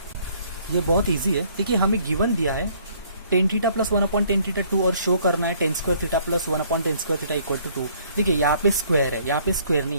ये बहुत ईजी है। देखिए हमें गिवन दिया है ten theta plus 1 upon tan theta 2 और शो करना है tan square theta plus 1 upon tan square theta equal to 2। देखिए यहाँ पे स्क्वायर है, यहाँ पे स्क्वायर नहीं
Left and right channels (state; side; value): inverted; both; correlation -0.61